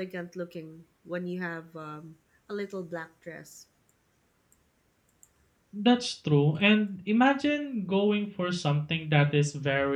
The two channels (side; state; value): both; identical; correlation 1.00